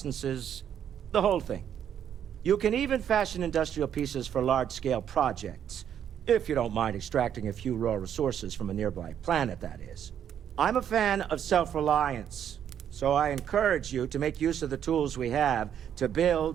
the whole thing. You can even fashion industrial pieces for large-scale projects, if you don't mind extracting a few raw resources from a nearby planet, that is. I'm a fan of self-reliance, so I encourage you to make use of the tools we have to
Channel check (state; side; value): quieter; left; 9.3 dB